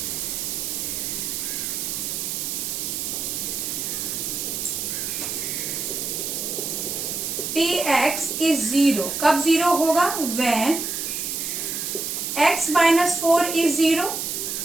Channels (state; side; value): noise; right; hiss, 3 dB below the sound